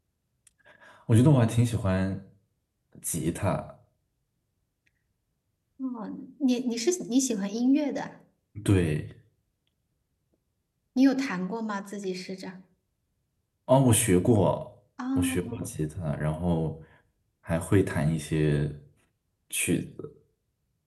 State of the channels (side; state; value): both; identical; correlation 1.00